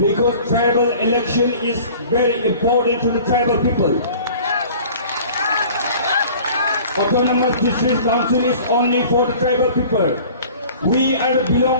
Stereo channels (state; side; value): inverted; both; correlation -0.46